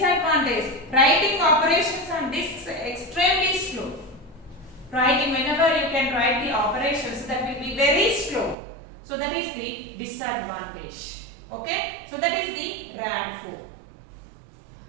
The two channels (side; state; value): left; drops out; at 8.6 s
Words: writing operations on disks extremely slow. Writing, whenever you can write the operations, that will be very slow. So that is the disadvantage. Okay, so that is the RAD4.